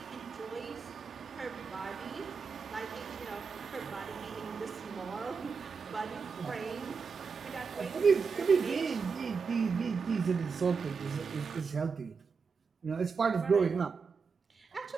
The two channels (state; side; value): quieter; left; 5.3 dB